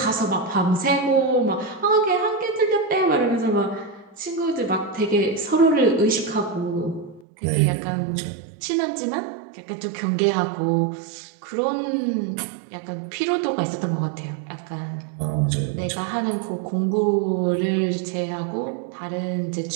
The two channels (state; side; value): drops out; left; at 7.2 s